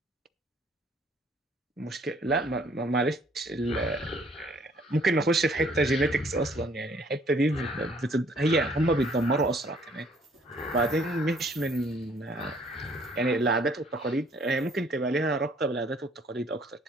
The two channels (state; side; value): normal; both; correlation 0.60